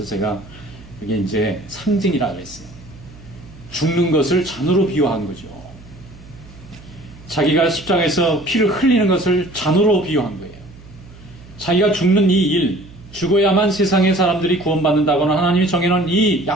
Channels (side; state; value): right; noise; hum, 20 dB below the sound